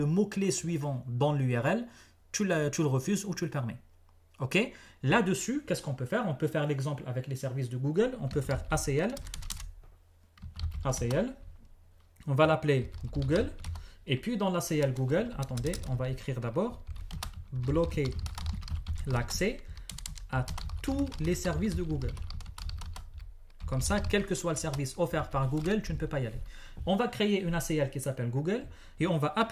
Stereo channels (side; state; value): both; identical; correlation 1.00